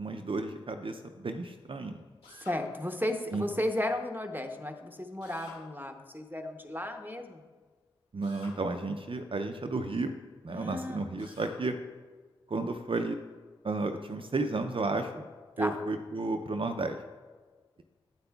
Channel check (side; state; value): both; normal; correlation 0.74